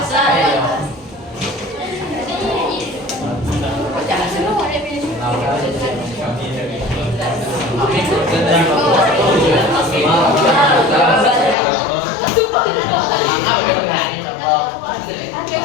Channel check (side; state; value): right; drops out; at 11.6 s